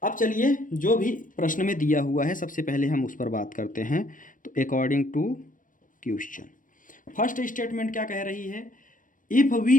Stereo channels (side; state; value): right; late; 0.38 ms